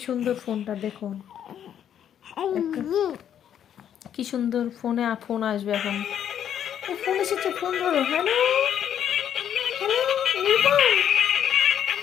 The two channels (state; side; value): quieter; right; 9.6 dB